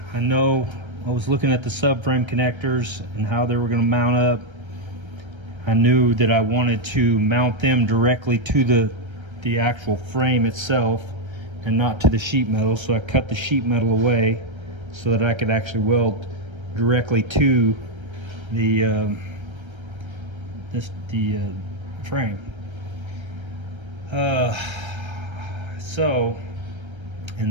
I know I was looking at the subframe connectors and how they were gonna mount up. I knew that I wanted to mount them directly to the actual frame itself and not to the sheet metal. So I cut the sheet metal away so that I could actually weld directly to the frame.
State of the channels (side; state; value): left; late; 1.3 ms